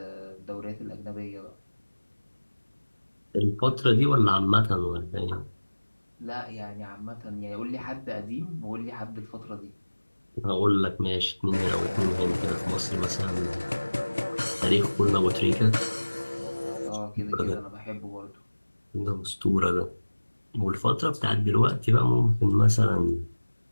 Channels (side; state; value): both; inverted; correlation -1.00